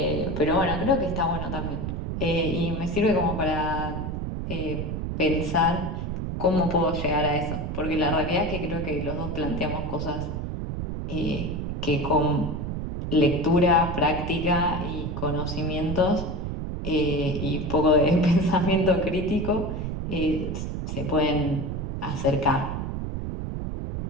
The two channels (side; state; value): right; noise; rumble, 4 dB below the sound